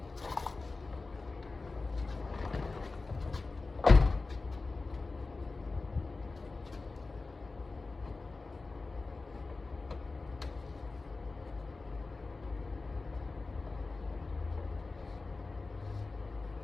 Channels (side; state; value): right; quieter; 3.7 dB